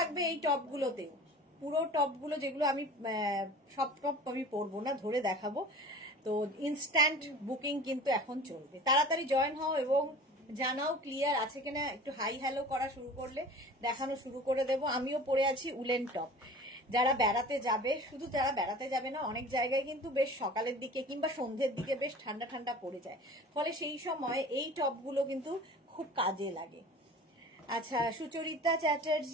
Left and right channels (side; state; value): both; normal; correlation 0.41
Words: এই টপগুলোতেও, পুরো টপগুলো যেগুলো আমি সব টপ আমি পরবো না, ধরে দেখাবো। তো ইনস্ট্যান্ট বুকিং কিন্তু এখন চলবে, তাড়াতাড়ি জয়েন হও এবং জানাও ক্লিয়ার আছে কিনা। একটু হাই হ্যালো করা শুরু করলে দেখানো শুরু করে দেব। আমিও পরে আছি উলেন টপ। যারা বেড়াতে যাবে, শুধু যারা বেড়াতে যাবে না, অনেক জায়গায় কিন্তু বেশ সকালের দিকে কিংবা সন্ধ্যের দিকে বেশ ঠান্ডা ঠান্ডা পড়ে যায়, ফলে সেই সময় এই টপগুলো কিন্তু খুব কাজে লাগে। আচ্ছা, সুচরিতা